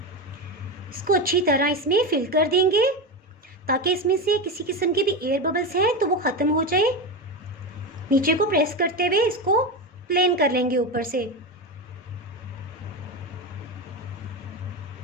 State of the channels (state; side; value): normal; both; correlation 0.18